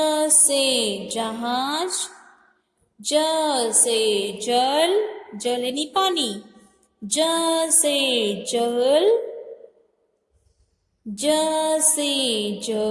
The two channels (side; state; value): both; identical; correlation 1.00